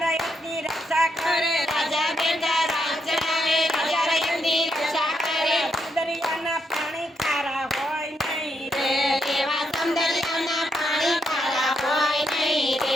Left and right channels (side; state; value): both; normal; correlation 0.79